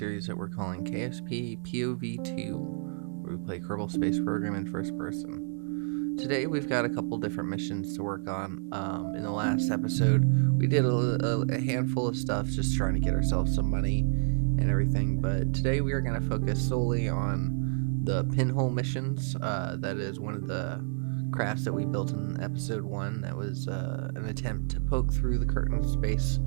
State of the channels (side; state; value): left; silent; digital silence